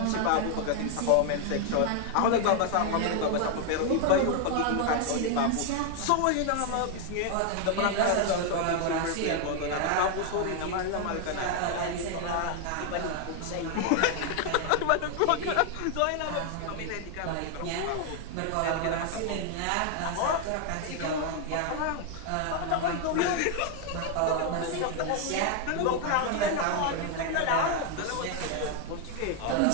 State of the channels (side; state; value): both; different; correlation 0.00